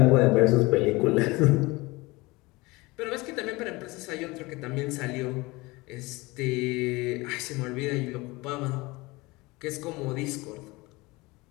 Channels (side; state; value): right; quieter; 22.9 dB